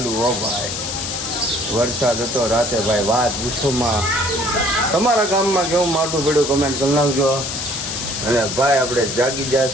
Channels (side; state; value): left; noise; hiss, 4 dB below the sound